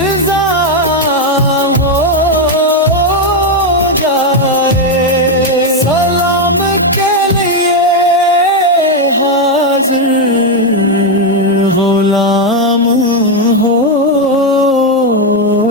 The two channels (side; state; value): both; normal; correlation 0.04